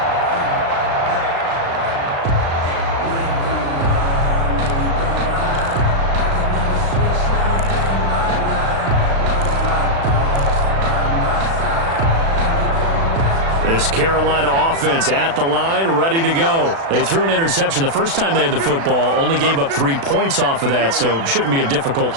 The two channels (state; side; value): late; left; 36 ms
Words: This Carolina offense at the line, ready to go. They threw an interception the first time they had the football, only gave up 3 points off of that, so it shouldn't be a difficult